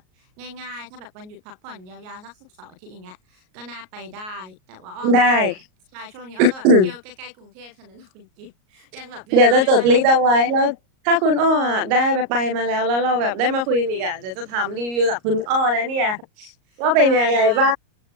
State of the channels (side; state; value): left; late; 38 ms